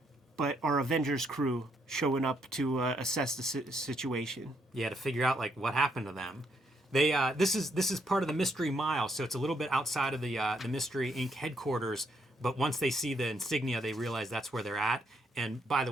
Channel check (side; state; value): both; normal; correlation 0.74